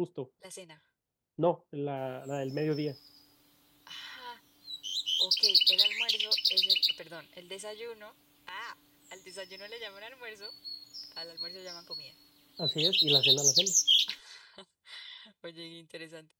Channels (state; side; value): identical; both; correlation 1.00